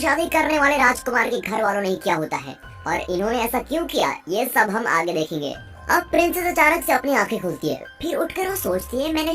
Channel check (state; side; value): identical; both; correlation 1.00